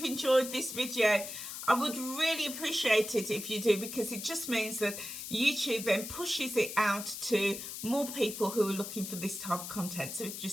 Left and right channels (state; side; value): noise; left; hiss, 8 dB below the sound